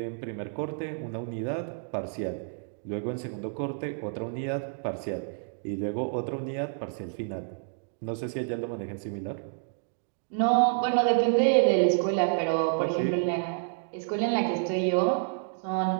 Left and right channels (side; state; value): left; silent; digital silence